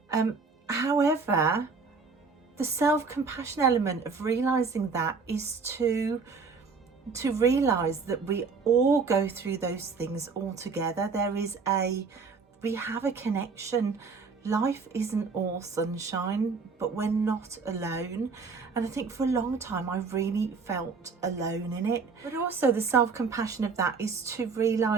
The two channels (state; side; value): quieter; left; 4.9 dB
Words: However, the self-compassion element of realizing that is to realize that we all go through those things all together. We have a connection. Life isn't all sunshine, but we're not alone. And I think for a long time I really felt alone in it. But also the self-compassion of that is to